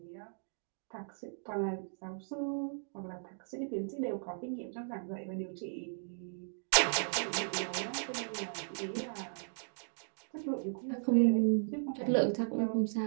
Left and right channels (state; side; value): silent; left; digital silence